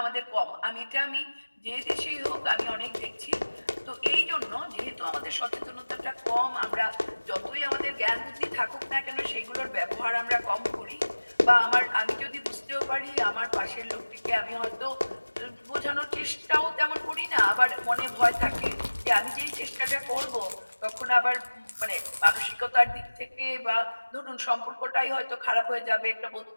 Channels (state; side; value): inverted; both; correlation -1.00